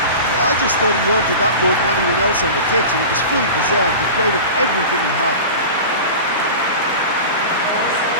Yeah, I just thought he wanted that more than anyone else on the pitch, and it was fully deserved. He gave it everything he had.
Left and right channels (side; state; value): both; inverted; correlation -0.32